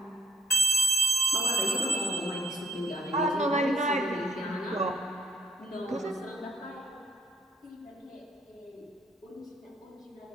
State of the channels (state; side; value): normal; both; correlation 0.62